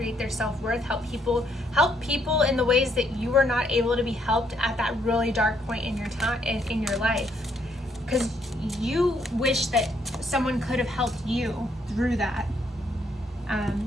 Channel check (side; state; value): both; normal; correlation 0.71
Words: their self-worth, help people in the ways that you were not able to be helped at that really dark point in your time in your life, because you wish that someone could have helped you through that.